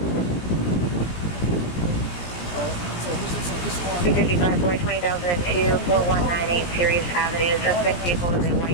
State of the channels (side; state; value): right; late; 17 ms